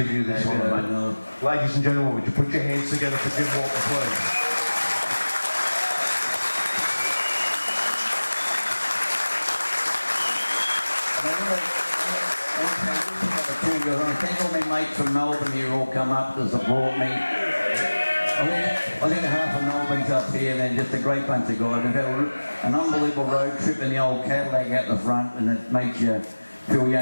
you this honour, mate. Ladies and gentlemen, would you put your hands together for Jim Walton, please? Thank all my mates from Melbourne here all come up to support me. I think half of Melbourne's up here and then just a great bunch of guys. We've had an unbelievable road trip in the old Cadillac out the front and it makes you feel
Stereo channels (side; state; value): both; inverted; correlation -1.00